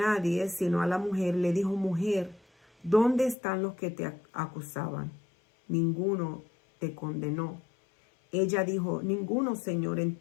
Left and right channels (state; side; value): drops out; right; at 3.4 s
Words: sino a la mujer, le dijo: Mujer, ¿dónde están los que te acusaban? Ninguno te condenó. Ella dijo: Ninguno, Señor.